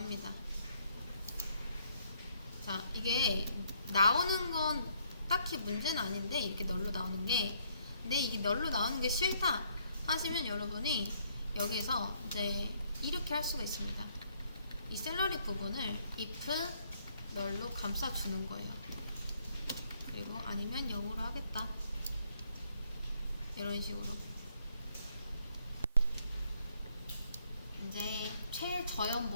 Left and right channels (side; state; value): both; inverted; correlation -0.68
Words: 자, 이게 나오는 건 딱히 문제는 아닌데 이렇게 널로 나오는 게, 근데 이게 널로 나오는 게 싫다 하시면 여러분이 여기서 이제 이렇게 할 수가 있습니다. 이 샐러리 부분을 if 널로 감싸주는 거예요. 그리고 아니면 0으로 하겠다. 이런 식으로. 이제